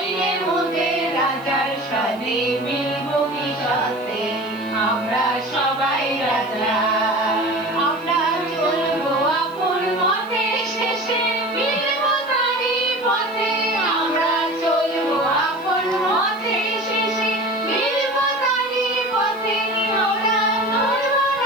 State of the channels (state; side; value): noise; right; hiss, 27 dB below the sound